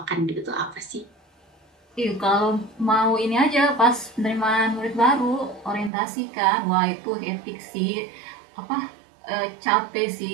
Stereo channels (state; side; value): drops out; left; at 5.9 s